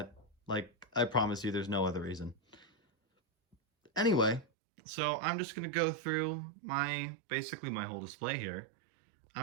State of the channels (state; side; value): drops out; left; at 4.5 s